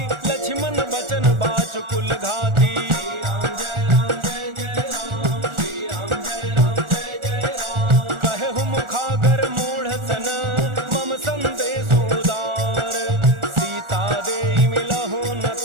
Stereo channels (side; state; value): left; late; 1.4 ms